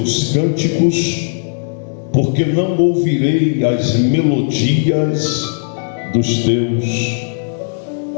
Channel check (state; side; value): silent; right; 69 dB below the other